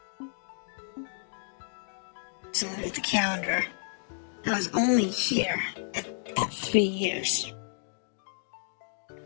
So look at the calendar. I was only here at 3 years.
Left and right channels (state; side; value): silent; right; digital silence